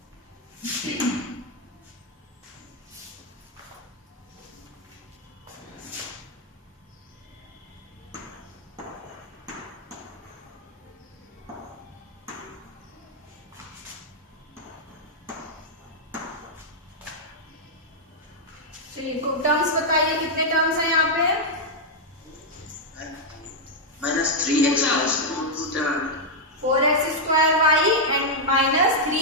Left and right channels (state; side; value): normal; both; correlation -0.03